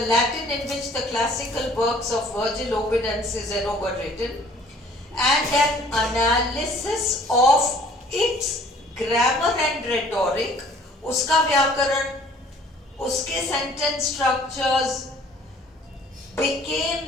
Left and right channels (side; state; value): both; normal; correlation 0.54